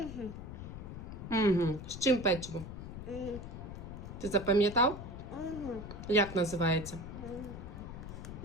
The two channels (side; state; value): left; noise; rumble, 9 dB below the sound